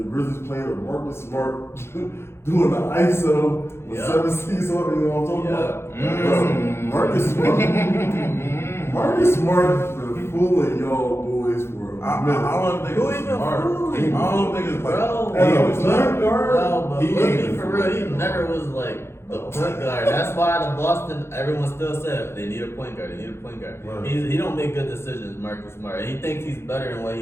Grizzlies playing with Marcus Smart doing the ISO with Yeah. 7 C's on. You know what I'm talking Yeah. about? Marcus Smart. Marcus Smart been fooling y'all boys for a minute. I don't think Who it's even smart. fooling? I don't think it's like. Bro, As a it's point guard, No, but He let's ain't be for real. He never was like the point guard. That's why the Boston, everyone still said they need a point guard. They need a point guard. Right. He don't make good decisions, Marcus Smart. And he thinks he's better than what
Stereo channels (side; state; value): right; late; 0.12 ms